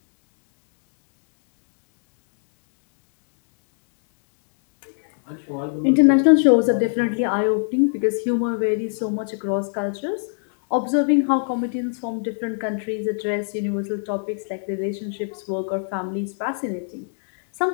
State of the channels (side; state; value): right; silent; digital silence